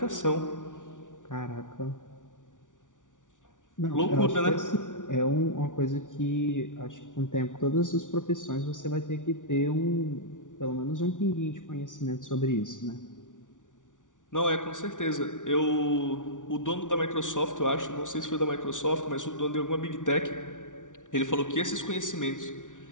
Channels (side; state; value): right; late; 0.87 ms